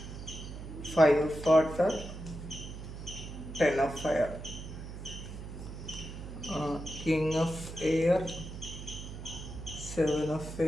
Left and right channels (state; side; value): noise; right; hum, 10 dB below the sound